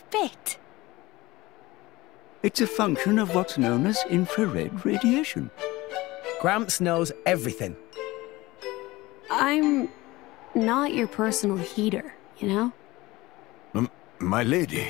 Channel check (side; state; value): right; quieter; 19.8 dB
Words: it. It's a function of what's known as infrared radiation. Gramps knows everything. I'm not your personal heater, you know? My lady,